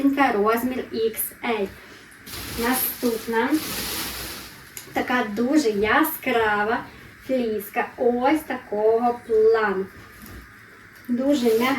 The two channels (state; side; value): identical; both; correlation 1.00